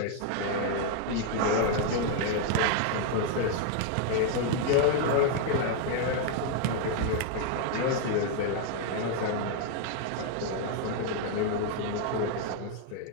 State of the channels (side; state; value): both; different; correlation 0.00